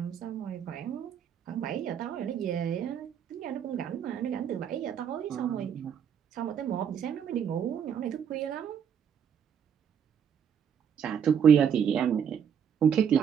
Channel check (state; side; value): quieter; left; 8.0 dB